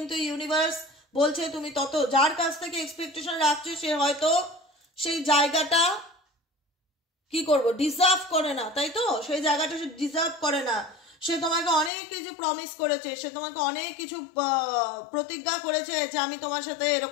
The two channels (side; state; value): right; drops out; at 11.9 s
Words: ইউনিভার্স বলছে তুমি তত, যার কাছ থেকে এক্সপেকটেশন রাখছো সে হয়তো সেই জায়গাটা কি করবো ডিজার্ভ করে না, তাই তো? সেই জায়গাটা সে ডিজার্ভ করে না। সে তোমাকে অনেক কিছু প্রমিস করেছে, সে তোমাকে অনেক কিছু প্রতিজ্ঞা করেছে যে আমি তোমার সাথে